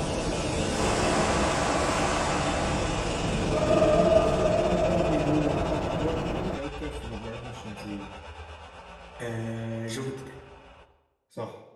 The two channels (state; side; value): identical; both; correlation 1.00